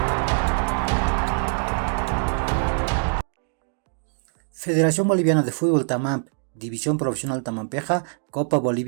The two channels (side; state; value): left; silent; digital silence